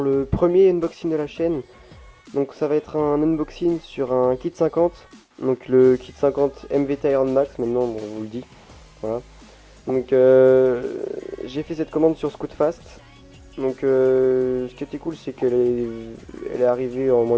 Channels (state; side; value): identical; both; correlation 1.00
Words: le premier unboxing de la chaîne. Donc ça va être un unboxing sur un kit 50. Donc le kit 50 MVT Iron Max, maintenant bon, on vous le dit. Voilà. Donc j'ai fait cette commande sur Scootfast. Donc ce qui était cool, c'est qu'elle est arrivée en moins